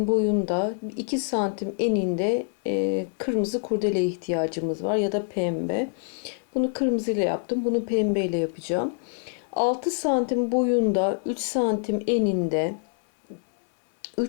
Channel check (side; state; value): right; silent; 61 dB below the other